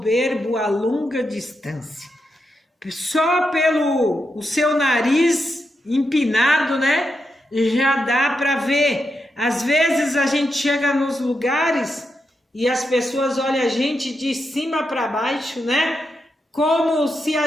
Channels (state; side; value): normal; both; correlation 0.85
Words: a longa distância. Só pelo o seu nariz empinado, né? Já dá para ver. Às vezes a gente chega nos lugares e as pessoas olham a gente de cima para baixo, né? Como se a